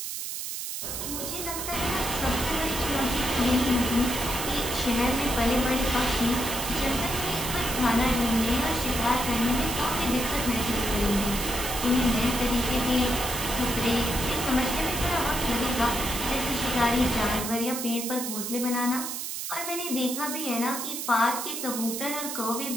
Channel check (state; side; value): noise; right; hiss, 5 dB below the sound